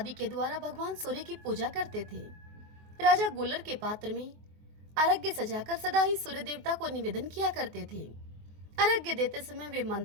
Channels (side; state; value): left; late; 24 ms